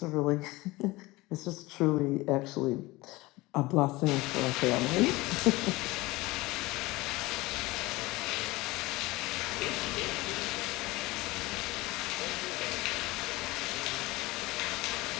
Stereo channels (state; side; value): quieter; right; 20.8 dB